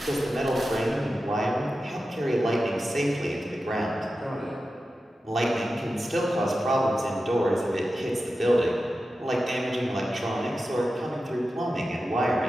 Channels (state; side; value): normal; both; correlation 0.92